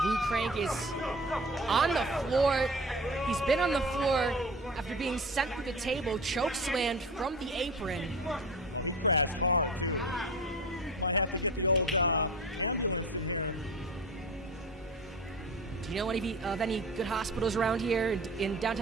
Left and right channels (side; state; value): both; normal; correlation 0.35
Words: Luke Crank is on the floor. He's been on the floor after being sent through the table, chokeslammed from the apron. Do you know of any good hospitals around here in